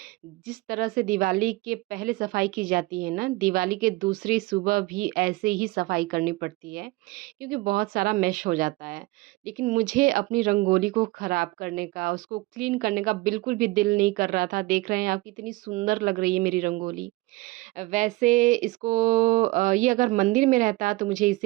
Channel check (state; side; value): quieter; left; 20.9 dB